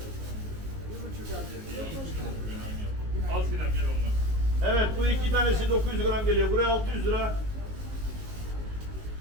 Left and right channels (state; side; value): late; left; 19 ms